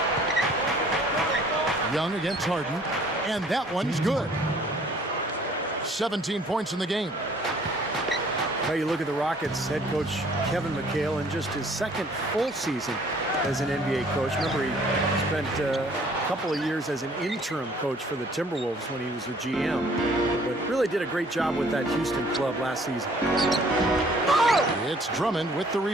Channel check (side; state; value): both; normal; correlation 0.57